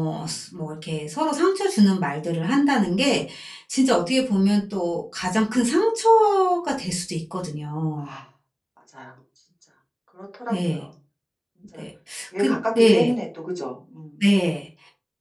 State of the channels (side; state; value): both; identical; correlation 1.00